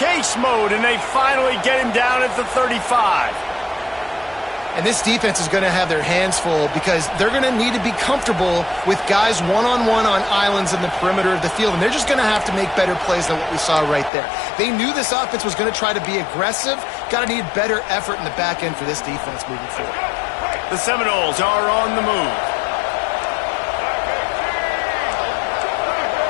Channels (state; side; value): drops out; right; at 14.1 s